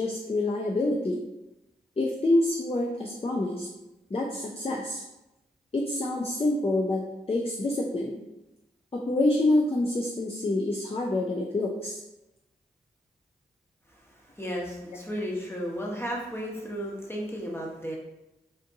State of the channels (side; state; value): both; normal; correlation 0.79